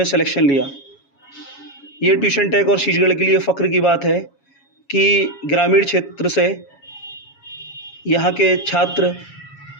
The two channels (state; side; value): late; right; 7.2 ms